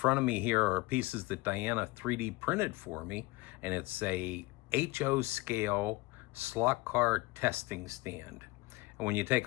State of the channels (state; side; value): quieter; right; 22.2 dB